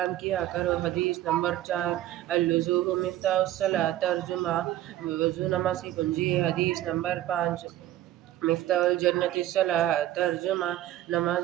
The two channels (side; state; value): left; quieter; 13.7 dB